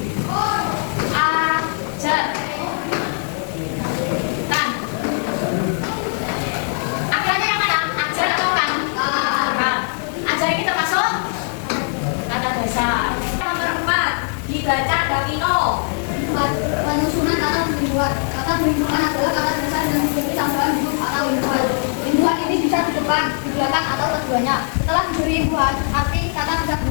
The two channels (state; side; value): silent; right; 56 dB below the other